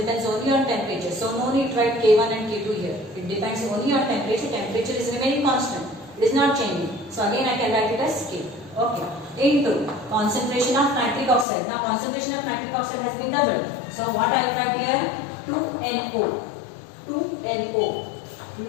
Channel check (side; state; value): right; drops out; at 11.5 s